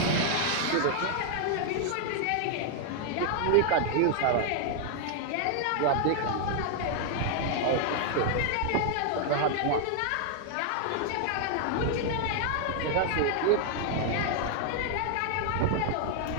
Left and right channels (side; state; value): both; different; correlation 0.00